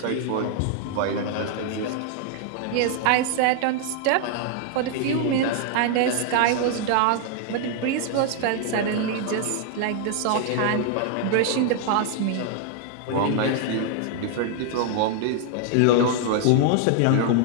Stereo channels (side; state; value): both; different; correlation 0.00